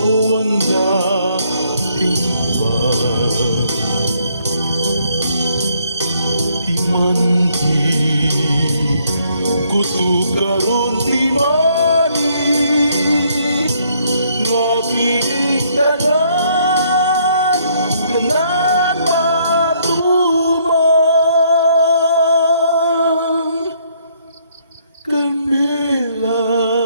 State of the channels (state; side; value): inverted; both; correlation -0.68